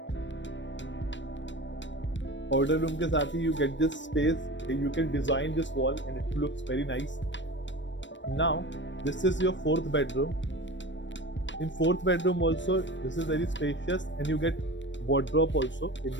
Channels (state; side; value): late; right; 0.53 ms